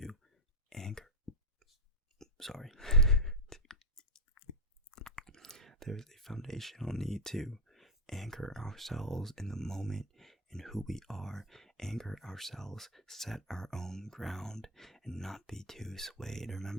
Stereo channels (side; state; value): both; normal; correlation 0.03